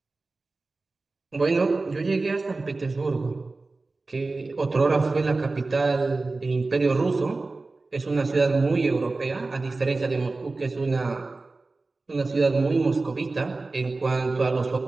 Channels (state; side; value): quieter; left; 3.5 dB